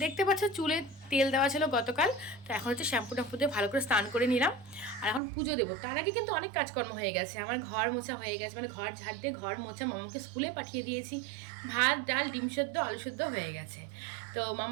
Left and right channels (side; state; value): left; drops out; at 5.2 s